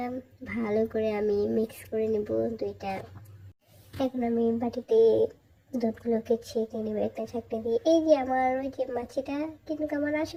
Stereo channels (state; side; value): identical; both; correlation 1.00